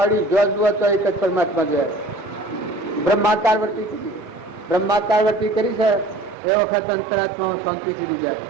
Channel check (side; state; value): left; drops out; at 6.4 s